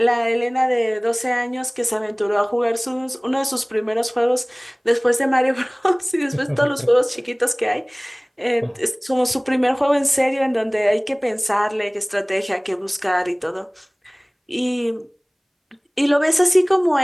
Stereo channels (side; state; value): both; identical; correlation 1.00